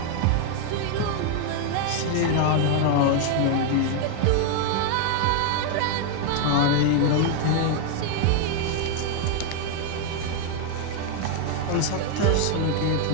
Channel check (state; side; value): different; both; correlation 0.00